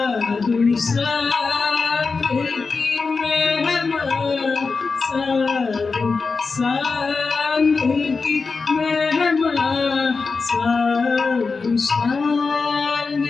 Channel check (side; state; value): right; quieter; 4.5 dB